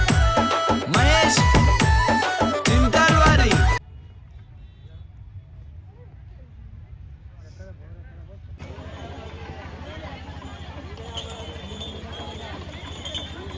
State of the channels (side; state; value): both; identical; correlation 1.00